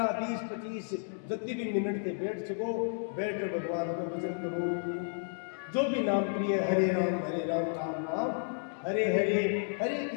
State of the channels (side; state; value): right; silent; digital silence